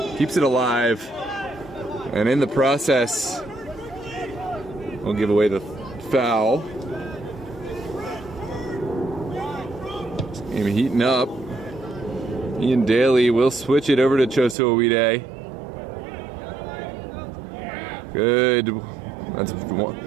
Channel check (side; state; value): left; drops out; at 14.6 s